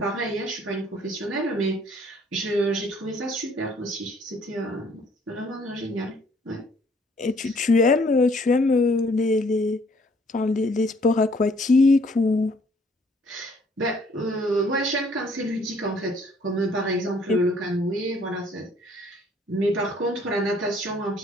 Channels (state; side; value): normal; both; correlation 0.62